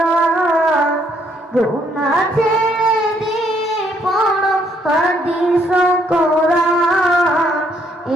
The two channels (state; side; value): normal; both; correlation 0.69